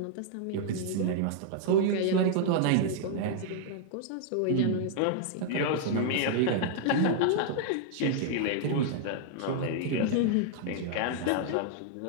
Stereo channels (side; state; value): both; different; correlation 0.00